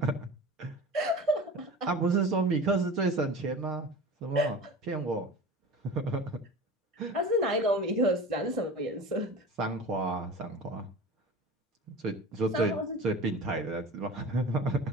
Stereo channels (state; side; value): normal; both; correlation 0.35